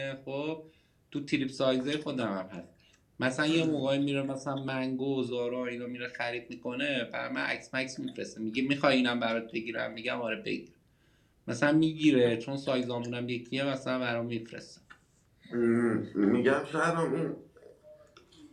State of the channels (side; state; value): both; identical; correlation 1.00